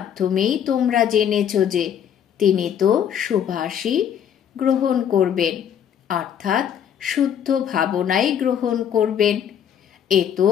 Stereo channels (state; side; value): quieter; right; 8.9 dB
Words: তোমরা জেনেছ যে তিনি তো সুভাষই গ্রহণ করবেন, অর্থাৎ শুদ্ধ ভাবনাই গ্রহণ করবেন। এ তো